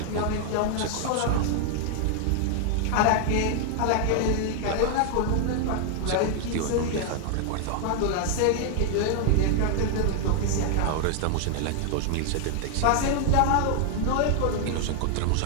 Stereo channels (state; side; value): different; both; correlation 0.00